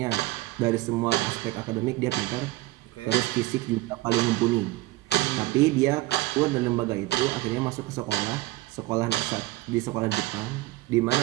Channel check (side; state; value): left; quieter; 18.7 dB